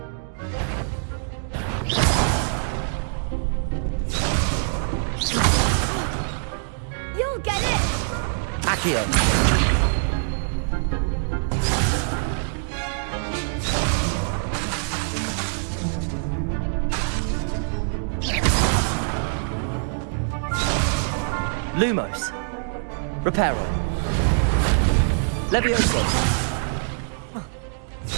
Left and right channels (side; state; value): left; silent; digital silence